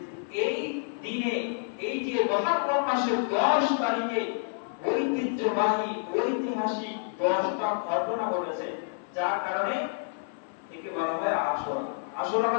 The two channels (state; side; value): silent; right; 59 dB below the other